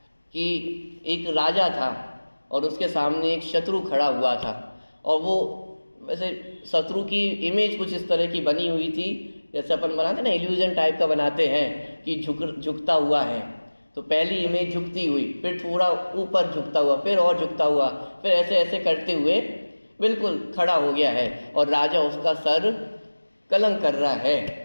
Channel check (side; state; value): both; inverted; correlation -1.00